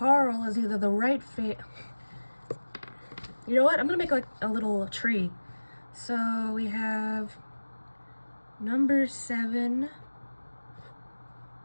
is either the right You know what? I'm gonna make like a little tree. So we have number 7.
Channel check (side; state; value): both; inverted; correlation -1.00